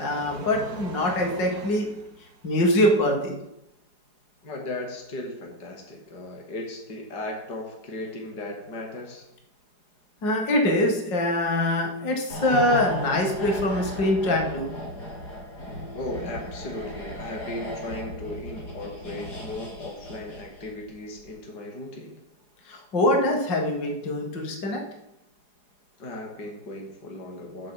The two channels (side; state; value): right; late; 4.8 ms